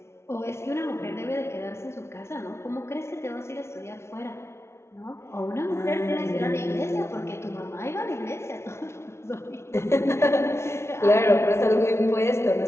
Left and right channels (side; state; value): right; late; 0.13 ms